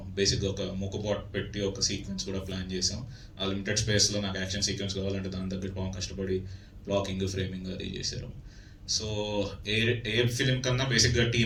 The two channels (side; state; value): both; identical; correlation 1.00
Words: బేసిక్గా ఒక మూకపాట్ పెట్టి ఒక సీక్వెన్స్ కూడా ప్లాన్ చేసాం. ఆ లిమిటెడ్ స్పేస్లో నాకు యాక్షన్ సీక్వెన్స్ కావాలంటే దాని దగ్గర బాగా కష్టపడి బ్లాకింగ్, ఫ్రేమింగ్ అది చేశారు. సో ఏ ఫిలిం కన్నా బేసిక్గా